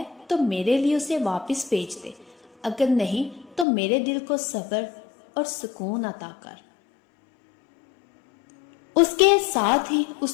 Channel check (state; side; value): drops out; right; at 3.7 s